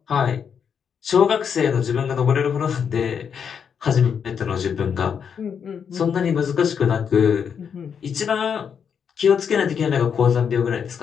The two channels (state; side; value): quieter; right; 7.2 dB